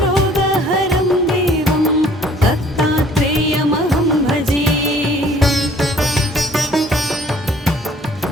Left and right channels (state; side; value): normal; both; correlation 0.56